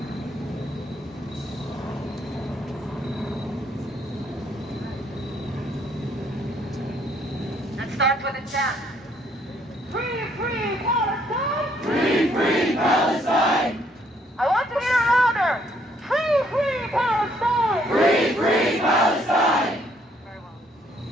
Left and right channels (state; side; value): normal; both; correlation 0.67